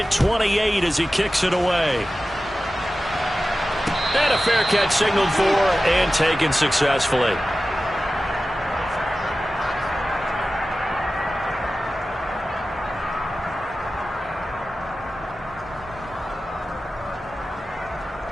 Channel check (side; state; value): both; normal; correlation 0.95